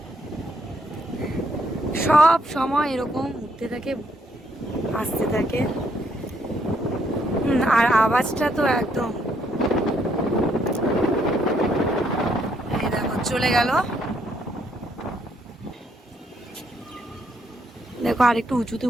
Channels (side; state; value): both; normal; correlation 0.72